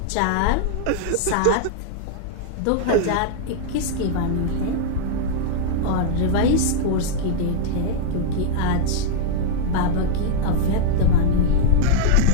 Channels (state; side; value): different; both; correlation -0.02